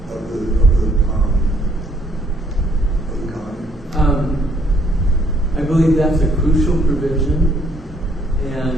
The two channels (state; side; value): normal; both; correlation 0.66